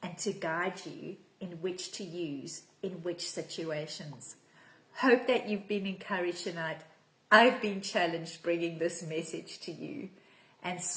and to guide you in which to use in which situations. Hope that you've been encouraged tonight. I've been challenged bringing this message to you. And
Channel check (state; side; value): identical; both; correlation 1.00